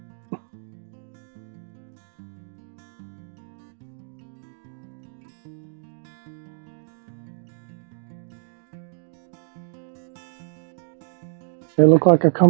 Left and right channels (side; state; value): left; silent; digital silence